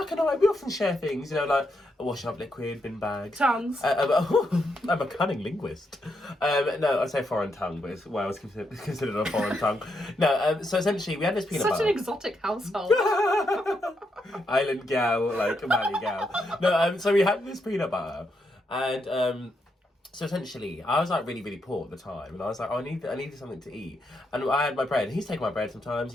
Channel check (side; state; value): both; normal; correlation 0.80